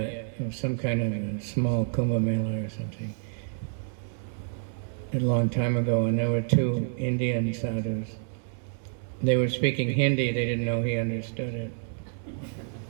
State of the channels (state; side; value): silent; left; 59 dB below the other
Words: some kind of a small Kumbh Mela or something, a long time ago, and there were two Indian sadhus. They were speaking Hindi, they didn't know he understood it.